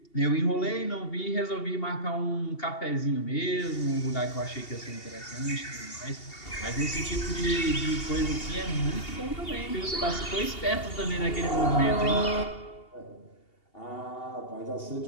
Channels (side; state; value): right; late; 2.8 ms